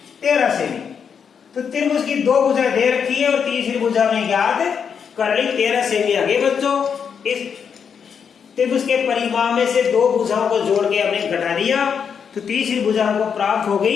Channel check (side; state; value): right; quieter; 6.9 dB